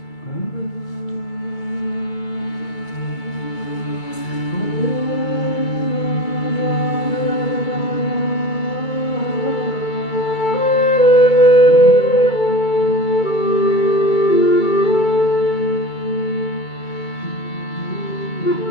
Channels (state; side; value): late; right; 2.3 ms